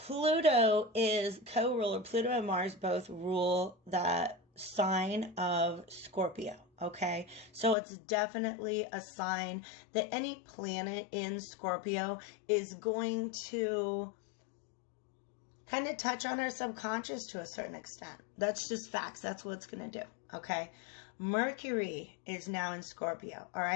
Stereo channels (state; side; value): drops out; right; at 7.8 s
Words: is co-ruler. Pluto and Mars both rule that sign of Scorpio. Okay, so it's definitely a sign that any planet in Scorpio is going to kind of touch on our subconscious to a certain extent. That's just facts. That's what it's going to do. Okay, Mercury is now in Scorpio. All